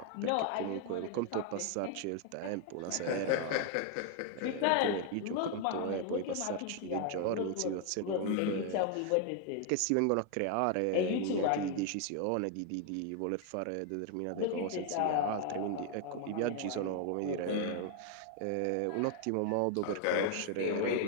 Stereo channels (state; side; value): different; both; correlation 0.00